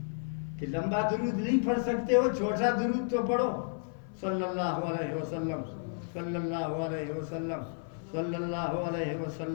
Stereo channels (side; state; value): right; silent; 56 dB below the other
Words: کہ لمبا درود نہیں پڑھ سکتے ہو, چھوٹا درود تو پڑھو. صلی اللہ علیہ وسلم, صلی اللہ علیہ وسلم, صلی اللہ علیہ